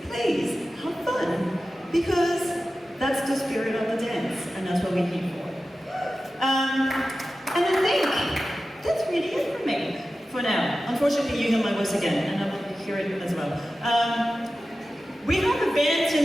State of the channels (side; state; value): both; normal; correlation 0.94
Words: have fun, because that's the spirit of the dance, and that's what we're here for. And I think that's really it for me for now. Unfortunately, you hear my voice again, and I will hear it as well. We have a band